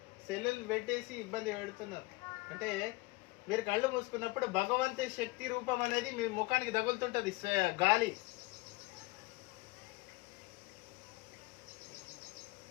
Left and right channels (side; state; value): right; quieter; 22.6 dB